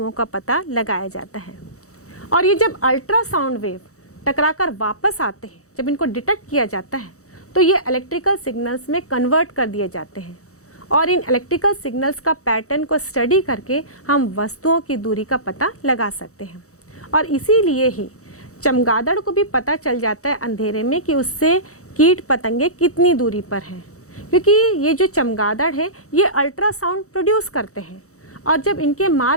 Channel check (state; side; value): late; right; 0.65 ms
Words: का पता लगाया जाता है। और ये जब अल्ट्रासाउंड वेव टकराकर वापस आते हैं, जब इनको डिटेक्ट किया जाता है, तो ये इलेक्ट्रिकल सिग्नल्स में कन्वर्ट कर दिए जाते हैं और इन इलेक्ट्रिकल सिग्नल्स का पैटर्न को स्टडी करके हम वस्तुओं की दूरी का पता लगा सकते हैं। और इसीलिए ही चमगादड़ को भी पता चल जाता है अंधेरे में कि उससे कीट पतंगे कितनी दूरी पर हैं, क्योंकि ये जो चमगादड़ है ये अल्ट्रासाउंड प्रोड्यूस करते हैं और जब इनके